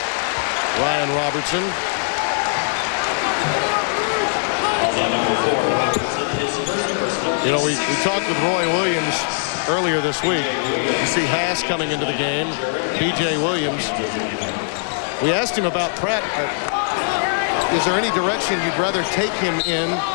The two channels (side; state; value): right; silent; digital silence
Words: Ryan Robertson. You know, we talked with Roy Williams earlier this week. You see Haas coming into the game, B.J. Williams. We asked him about Pratt. Is there any direction you'd rather take him in